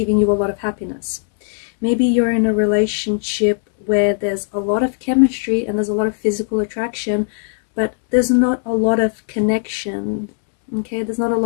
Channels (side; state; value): right; silent; 67 dB below the other